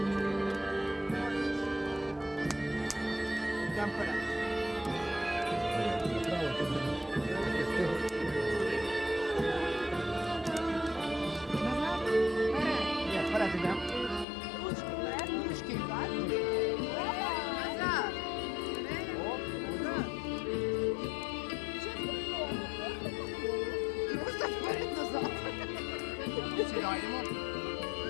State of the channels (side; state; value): right; drops out; at 14.2 s